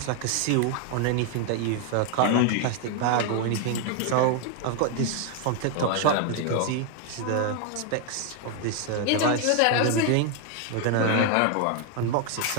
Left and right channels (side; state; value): both; different; correlation 0.00